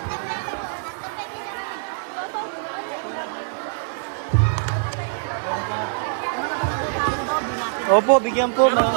Opo, bigyan po.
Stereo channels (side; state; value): left; silent; digital silence